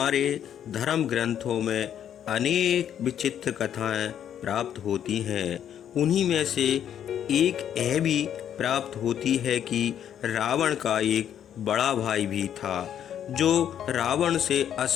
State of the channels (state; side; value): quieter; right; 9.7 dB